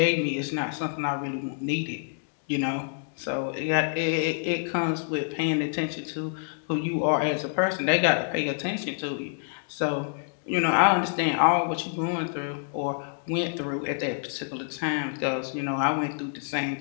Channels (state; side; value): silent; right; digital silence